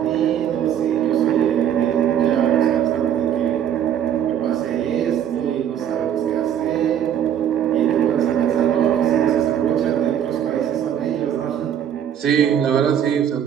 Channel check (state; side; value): quieter; left; 9.6 dB